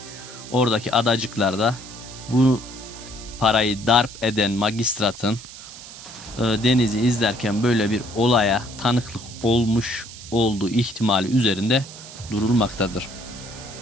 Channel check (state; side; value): noise; right; hiss, 15 dB below the sound